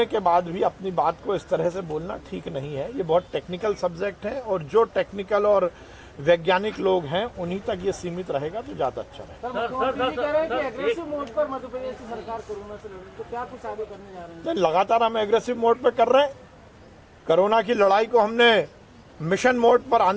के बाद भी अपनी बात को इस तरह से बोलना ठीक नहीं है। ये बहुत टेक्निकल सब्जेक्ट है और जो टेक्निकल और वैज्ञानिक लोग हैं उन्हीं तक ये सीमित रहेगा तो ज्यादा अच्छा रहेगा। लगातार हम एग्रेसिव मोड पर कर रहे हैं। कोरोना की लड़ाई को हमने मिशन मोड पर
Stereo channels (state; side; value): identical; both; correlation 1.00